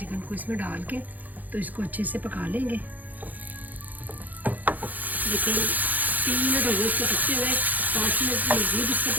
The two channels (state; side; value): late; left; 0.082 ms